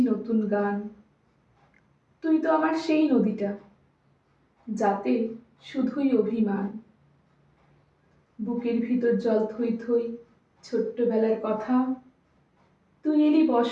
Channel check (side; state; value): both; identical; correlation 1.00